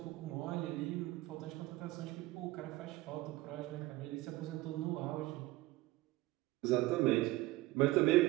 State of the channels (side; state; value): left; quieter; 18.5 dB